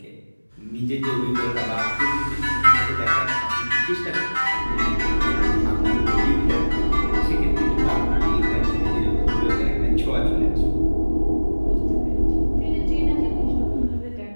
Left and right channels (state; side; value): inverted; both; correlation -1.00